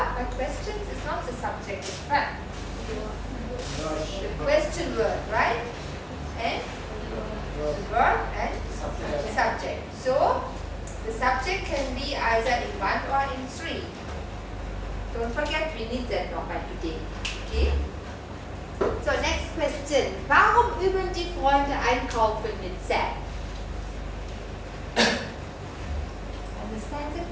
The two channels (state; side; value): identical; both; correlation 1.00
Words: But questions is not the subject, it's verb. The question word, right? And the verb and subject. So the subject can be either in 1 or in 3. Don't forget, we need that nochmal today. Okay? So next question. Warum üben die Freunde einkaufen mit Sam? Understand the